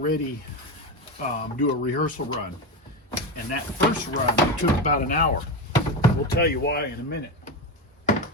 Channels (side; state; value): both; normal; correlation 0.17